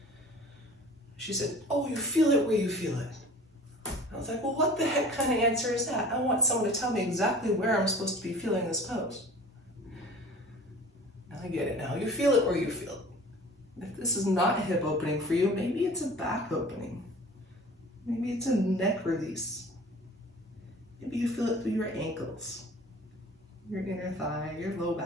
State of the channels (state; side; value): normal; both; correlation 0.44